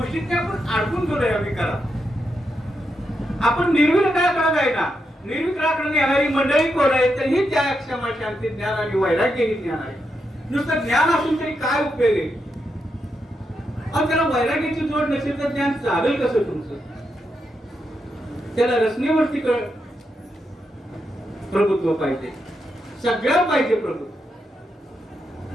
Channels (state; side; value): normal; both; correlation 0.84